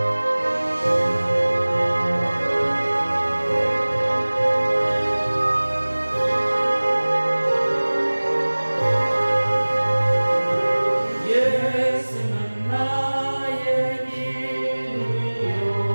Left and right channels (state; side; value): inverted; both; correlation -1.00